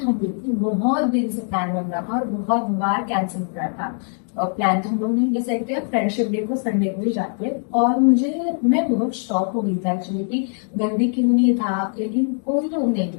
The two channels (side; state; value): right; silent; 55 dB below the other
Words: लोग बहुत दिन से प्लान बन रहा था और बहुत बार कैंसिल कर रहा था। प्लान तो हम लोग नहीं डिसाइड किया, फ्रेंडशिप डे को संडे को ही जाते हैं। और मैं बहुत शॉक हो गई था एक्चुअली कि गंदी क्यों नहीं था, लेकिन कोई लोग नहीं